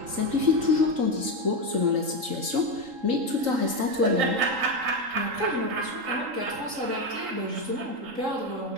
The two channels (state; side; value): late; left; 3.8 ms